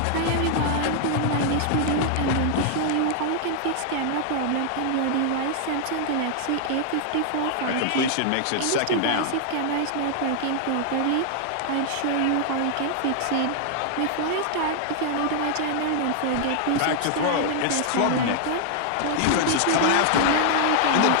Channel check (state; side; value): different; both; correlation -0.01